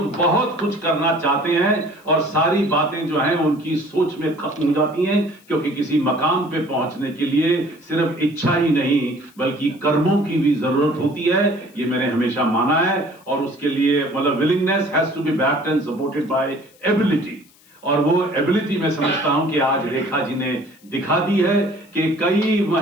बहुत कुछ करना चाहते हैं और सारी बातें जो हैं उनकी सोच में खत्म हो जाती हैं, क्योंकि किसी मकाम पे पहुंचने के लिए सिर्फ इच्छा ही नहीं बल्कि कर्मों की भी जरूरत होती है। ये मैंने हमेशा माना है, और उसके लिए मतलब willingness has to be backed and supported by ability. और वो एबिलिटी मैं समझता हूं कि आज रेखा जी ने दिखा दी है कि कई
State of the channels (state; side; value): noise; left; hiss, 29 dB below the sound